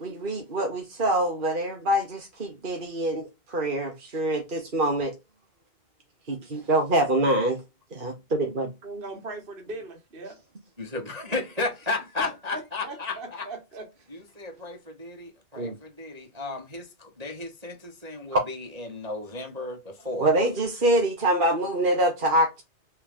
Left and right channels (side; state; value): left; late; 2.4 ms